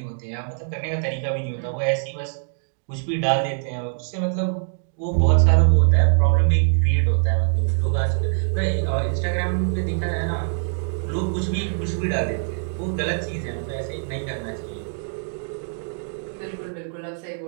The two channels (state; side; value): silent; left; digital silence